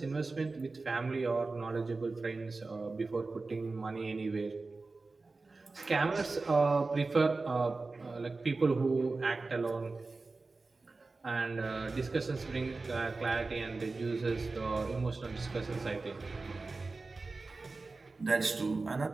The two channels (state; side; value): quieter; left; 3.7 dB